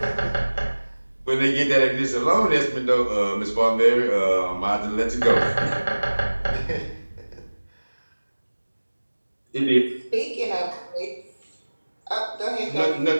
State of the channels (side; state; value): both; inverted; correlation -1.00